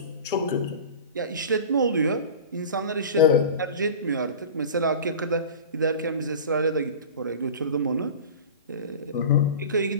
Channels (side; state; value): both; inverted; correlation -0.35